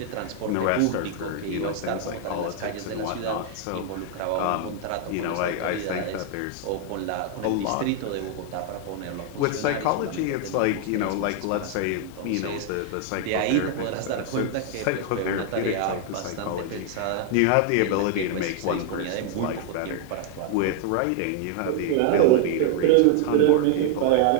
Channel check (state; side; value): different; both; correlation 0.00